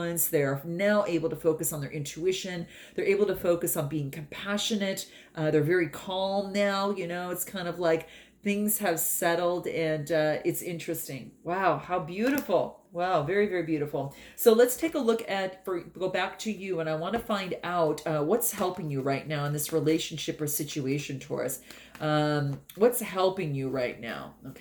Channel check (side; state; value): both; identical; correlation 1.00